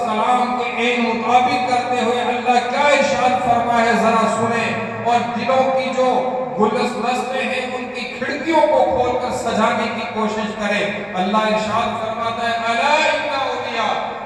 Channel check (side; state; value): both; identical; correlation 1.00